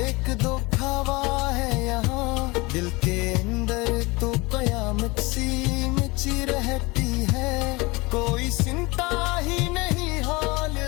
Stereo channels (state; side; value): quieter; right; 24.4 dB